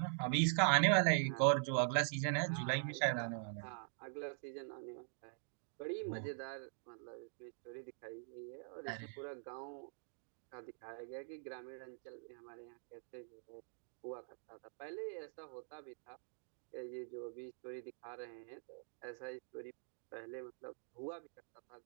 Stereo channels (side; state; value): left; silent; digital silence